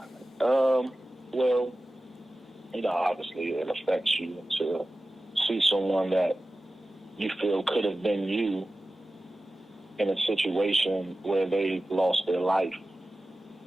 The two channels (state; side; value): normal; both; correlation 0.95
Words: well, obviously it affects you to see someone that you feel could have been you in a situation where they lost their life.